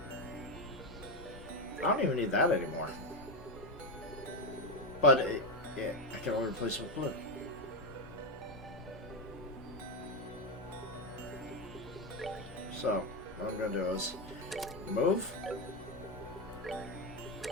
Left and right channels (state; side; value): normal; both; correlation 0.10